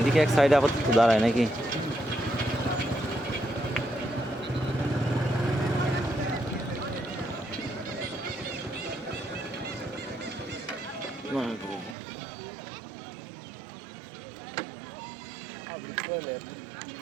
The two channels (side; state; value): left; drops out; at 12.0 s